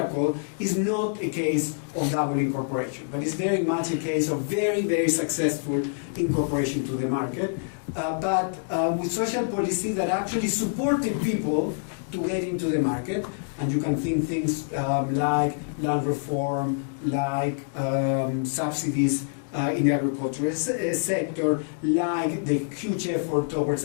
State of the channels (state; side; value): silent; right; digital silence